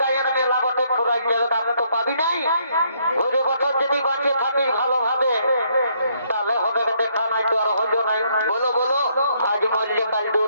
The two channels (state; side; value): inverted; both; correlation -0.70